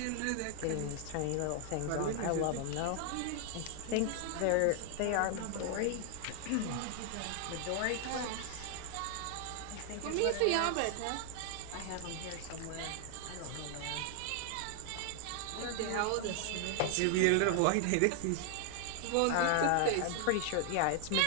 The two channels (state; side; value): different; both; correlation 0.00